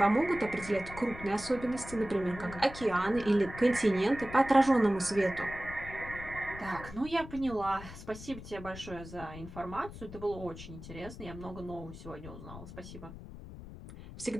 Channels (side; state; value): left; noise; rumble, 13 dB below the sound